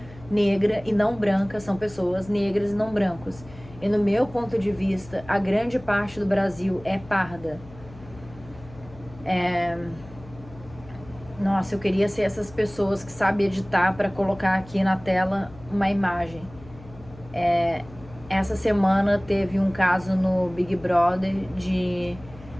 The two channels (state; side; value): noise; left; hum, 19 dB below the sound